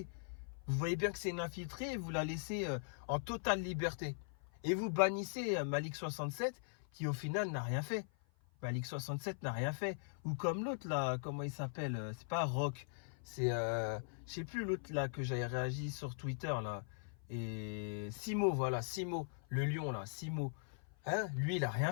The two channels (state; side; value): silent; right; 51 dB below the other